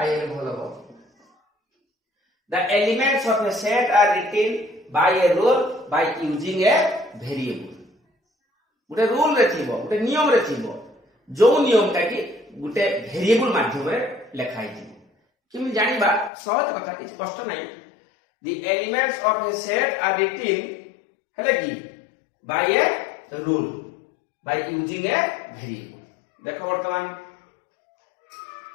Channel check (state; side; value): drops out; right; at 16.3 s